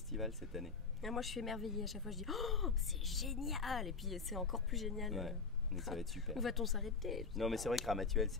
cette année. Et moi, je suis émerveillée. À chaque fois, je dis oh, c'est génial. Et puis, c'est encore plus génial. Ouais, donc ça va être super. Où va-t-on s'arrêter? Non, mais c'est vrai que Ramatuelle,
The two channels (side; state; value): right; quieter; 4.8 dB